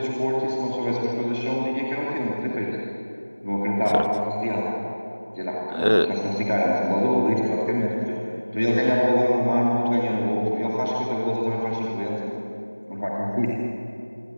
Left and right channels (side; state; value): both; inverted; correlation -1.00